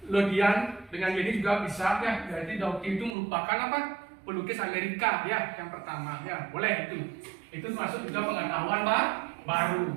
Lodian dengan Yeni juga bisa ya. Jadi Dorothy itu merupakan apa? Pelukis Amerika ya, yang pertama ya, boleh itu. Itu termasuk juga pengetahuan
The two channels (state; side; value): drops out; left; at 3.2 s